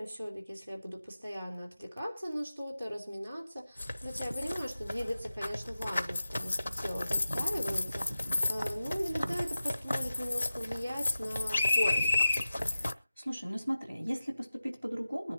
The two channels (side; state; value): both; inverted; correlation -0.94